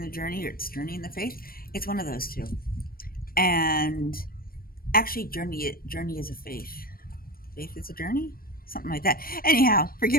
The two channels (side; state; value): right; late; 0.43 ms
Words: the journey, or it's journey in the faith. It's one of those two. And actually, journey is a faith. Faith is a journey, something like that. Anyhow,